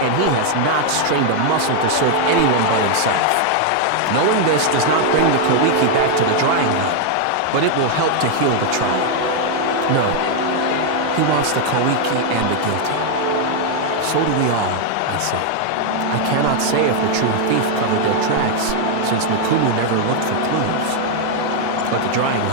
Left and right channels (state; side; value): different; both; correlation 0.00